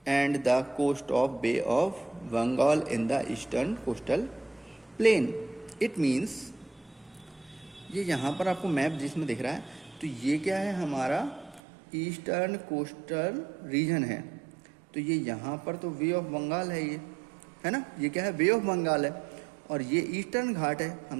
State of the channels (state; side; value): drops out; left; at 11.6 s